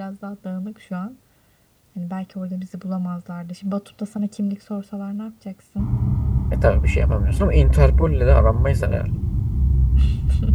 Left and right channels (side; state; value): both; identical; correlation 1.00